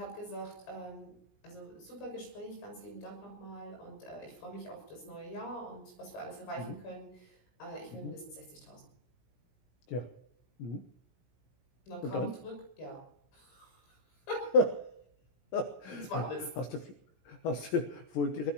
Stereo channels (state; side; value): late; right; 17 ms